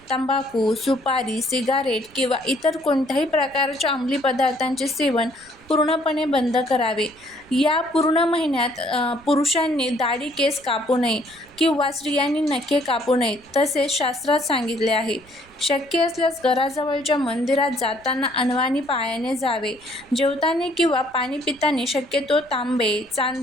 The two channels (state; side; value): noise; right; rumble, 28 dB below the sound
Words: तंबाखू, सुपारी, सिगारेट किंवा इतर कोणत्याही प्रकारच्या अंमली पदार्थांचे सेवन पूर्णपणे बंद करावे. या पूर्ण महिन्यात पुरुषांनी दाढी, केस कापू नये किंवा स्त्रियांनी नखे कापू नयेत, तसेच शास्त्रात सांगितले आहे. शक्य असल्यास घराजवळच्या मंदिरात जाताना अनवाणी पायाने जावे. जेवताना किंवा पाणी पिताना शक्यतो तांबे,